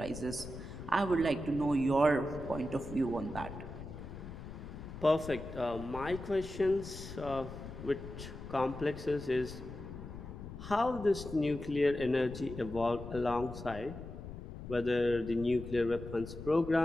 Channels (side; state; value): left; noise; rumble, 11 dB below the sound